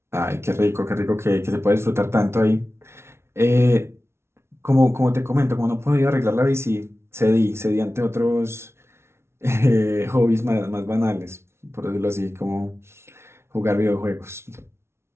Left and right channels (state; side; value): late; left; 0.12 ms